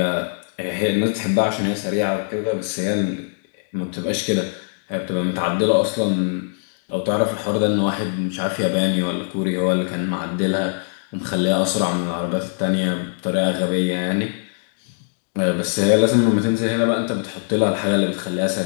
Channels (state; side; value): silent; right; digital silence